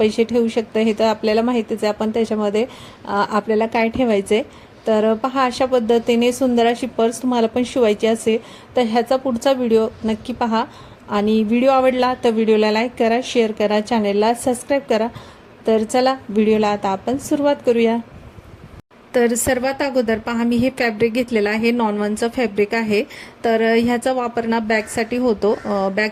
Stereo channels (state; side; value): identical; both; correlation 1.00